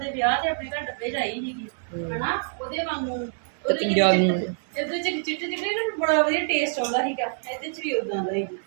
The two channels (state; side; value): silent; left; digital silence